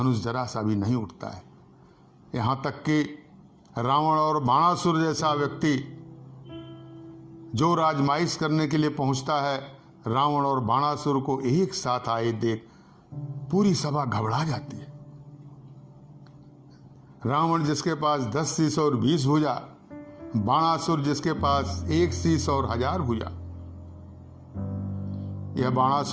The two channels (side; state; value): both; identical; correlation 1.00